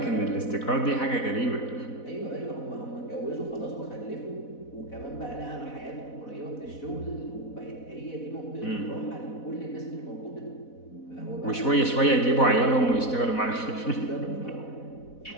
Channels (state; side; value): late; right; 4.1 ms